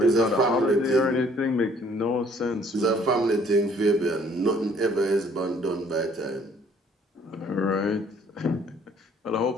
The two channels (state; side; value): normal; both; correlation 0.60